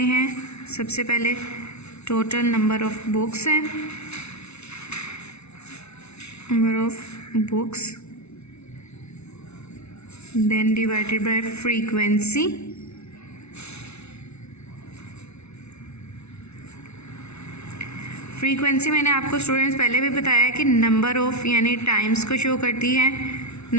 हैं। सबसे पहले टोटल नंबर ऑफ बुक्स है, number of books, then divided by frequency, frequency मैंने आपको स्टूडेंट्स पहले भी बताया कि नंबर ऑफ़ यानी टाइम्स को शो करती है।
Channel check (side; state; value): right; late; 0.81 ms